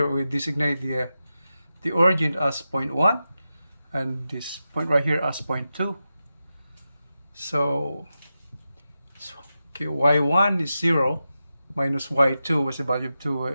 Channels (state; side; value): inverted; both; correlation -0.91